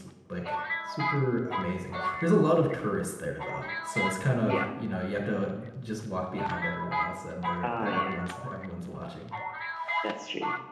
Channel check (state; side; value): identical; both; correlation 1.00